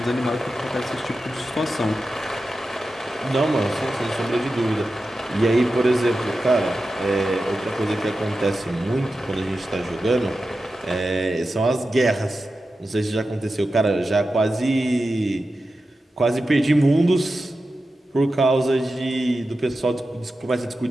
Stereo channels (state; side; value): normal; both; correlation 0.92